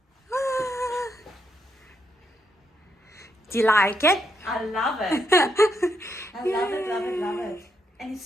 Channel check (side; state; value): both; normal; correlation 0.79